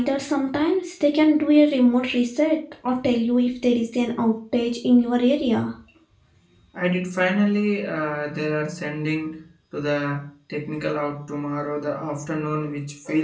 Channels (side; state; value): both; identical; correlation 1.00